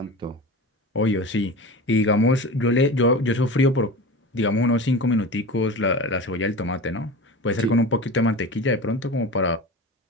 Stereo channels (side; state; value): both; normal; correlation 0.31